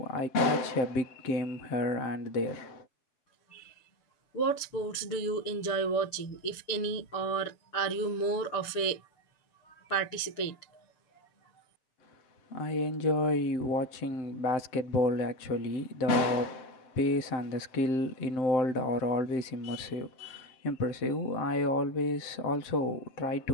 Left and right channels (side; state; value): right; late; 6.8 ms